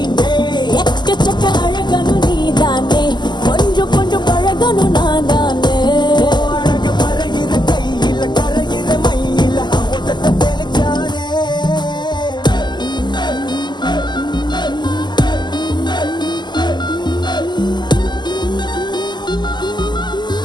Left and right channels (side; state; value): right; late; 0.21 ms